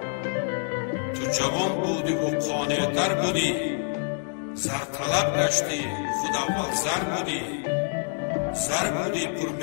تو جوان بودی و قانع‌تر بودی، زر طلب گشتی خود اول زر بودی. زر بودی پر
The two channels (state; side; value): silent; right; 60 dB below the other